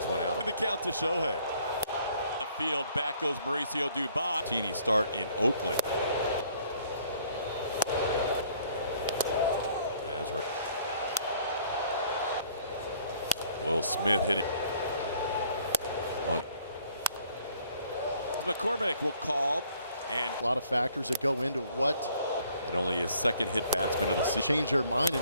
one out. The count to Shohei. The field back goes Mauricio Dubon. Teeny start in Oakland. As we're Will Smith hitting. McCormick will call. And a lot of factors that go into what. And only his second hit batsman of the season. Change their mind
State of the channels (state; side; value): inverted; both; correlation -0.61